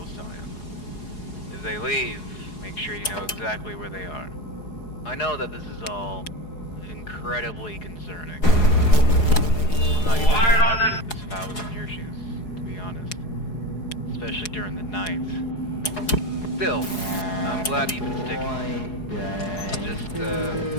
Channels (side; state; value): right; late; 4.8 ms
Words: eye on them. If they leave, make sure you know exactly where they are. I know that this is all incredibly concerning. I'm not even sure if I was in your shoes, to be honest. Especially during the night. Still, I'm glad you've been sticking. Just,